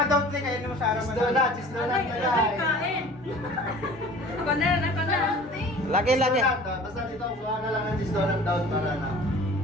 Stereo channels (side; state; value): both; normal; correlation 0.45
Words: daw kayo mo sa araw Cheese donut, cheese donut na lang. Ako na, ako na. Lagi, lagi. Cheese donut, basta dito, kuha na lang ng cheese donut down para na.